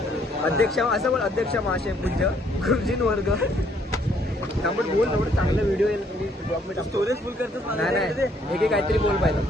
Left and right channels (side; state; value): both; normal; correlation 0.66